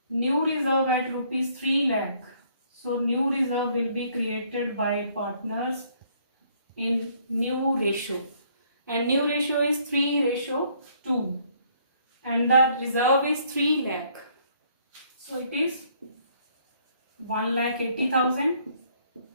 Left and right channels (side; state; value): both; inverted; correlation -0.65